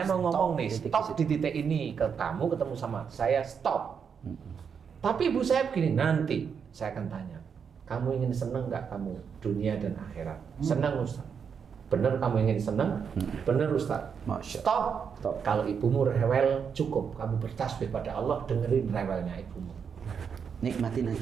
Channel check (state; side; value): quieter; left; 6.7 dB